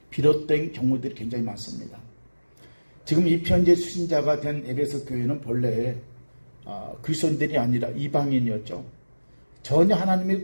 비롯된 경우들이 굉장히 많습니다. 지금 이 편지의 수신자가 된 에베소 교회는 본래 그리스도인들이 아니라 이방인이었죠. 전혀 하나님의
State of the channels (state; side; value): inverted; both; correlation -1.00